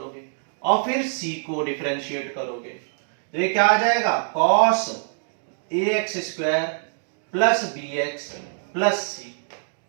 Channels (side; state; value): left; silent; digital silence